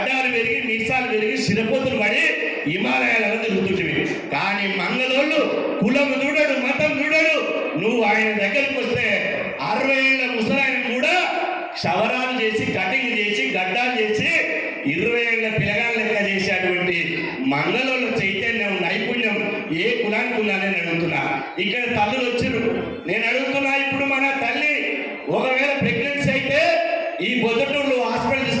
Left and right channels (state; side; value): identical; both; correlation 1.00